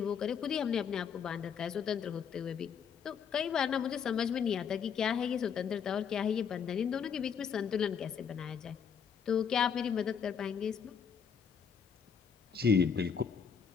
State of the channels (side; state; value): right; quieter; 7.0 dB